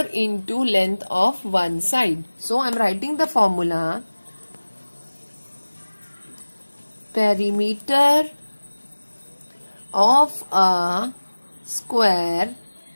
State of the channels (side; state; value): both; inverted; correlation -1.00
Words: into length of one side. So I am writing the formula. Perimeter of a square